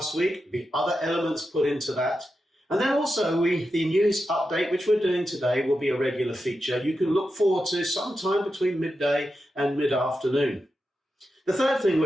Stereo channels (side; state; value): both; normal; correlation 0.89